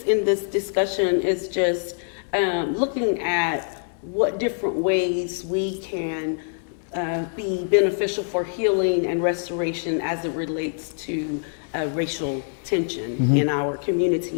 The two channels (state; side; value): silent; right; digital silence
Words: in this discussion is just looking at what different ways we can be beneficial for healing and restoration as it relates to racial tension in our